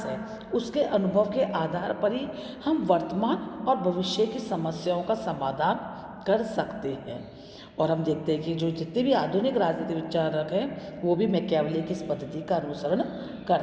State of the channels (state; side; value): identical; both; correlation 1.00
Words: है, उसके अनुभव के आधार पर ही हम वर्तमान और भविष्य की समस्याओं का समाधान कर सकते हैं। और हम देखते हैं कि जो जितने भी आधुनिक राजनीतिक विचारक हैं वो भी मैकियावली की इस पद्धति का अनुसरण